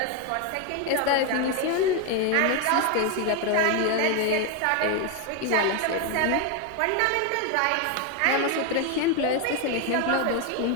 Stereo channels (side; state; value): both; different; correlation 0.01